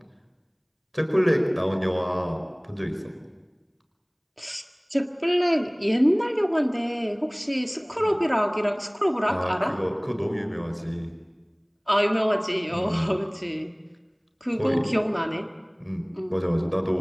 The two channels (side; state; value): both; identical; correlation 1.00